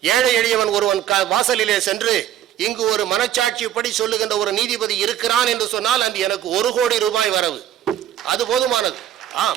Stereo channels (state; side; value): quieter; left; 11.3 dB